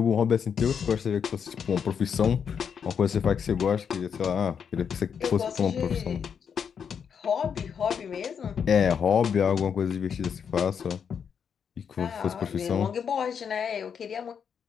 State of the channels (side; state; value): right; quieter; 7.2 dB